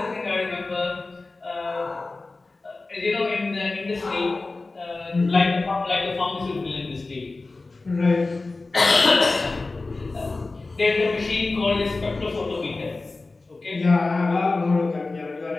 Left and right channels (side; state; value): right; quieter; 3.4 dB